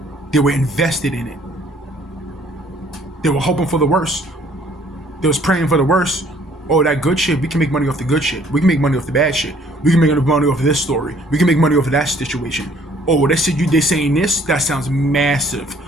They were invested in it. They were hoping for the worst. They was praying for the worst. Oh, that good shit, we can make money off the good shit. We can make money off the bad shit. We can make money off of this story. We can make money off of that situation. Oh, they saying this? That sounds massive.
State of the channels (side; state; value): both; normal; correlation 0.60